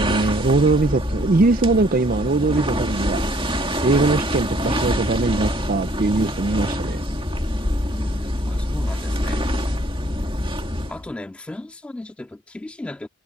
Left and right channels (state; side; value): normal; both; correlation 0.62